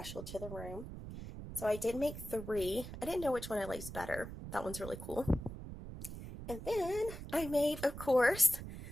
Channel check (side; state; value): right; noise; rumble, 10 dB below the sound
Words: to the room. So I did make 3. I didn't know which one I liked better. That one's really cool. And then I made, of course,